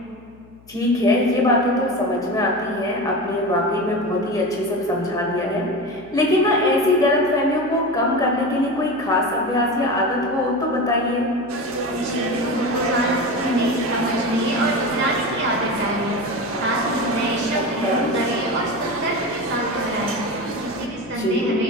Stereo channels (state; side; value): noise; left; hum, 25 dB below the sound